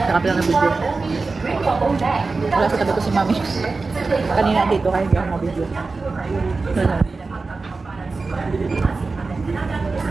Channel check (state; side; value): quieter; left; 3.9 dB